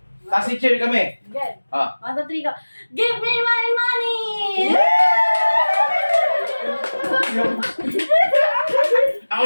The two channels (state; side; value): inverted; both; correlation -1.00